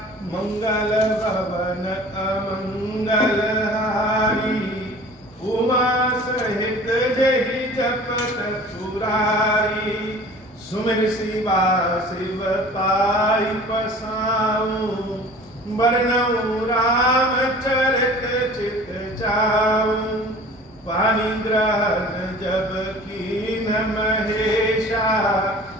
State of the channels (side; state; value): both; normal; correlation 0.45